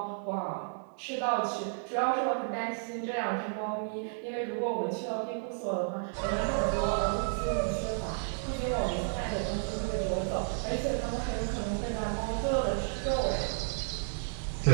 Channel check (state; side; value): silent; left; 56 dB below the other